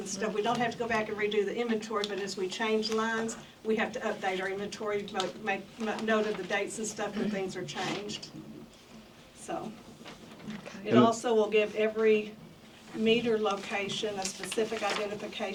stuff, we don't have to go back and redo the inventory, but as we change lines, we have to update our inventory, make note of the dates and stuff when things are changed. So, it also will give every meter location a specific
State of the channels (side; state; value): both; identical; correlation 1.00